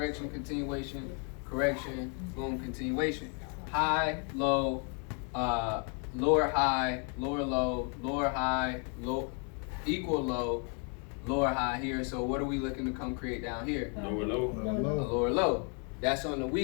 continuation, correction, boom, continuation. High, low, lower high, lower low, lower high, low, equal low, lower high here. So what are we looking to come create down here? Lower low. A lower low. That's on the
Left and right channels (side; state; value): right; quieter; 38.8 dB